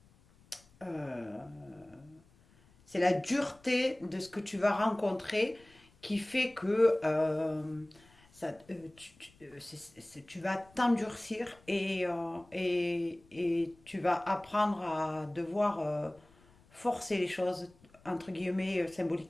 c'est la dureté de ce que tu vas rencontrer qui fait que tu vas t'endurcir et tu vas apprendre à devoir forcer les choses, entre guillemets,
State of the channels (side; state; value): left; noise; rumble, 29 dB below the sound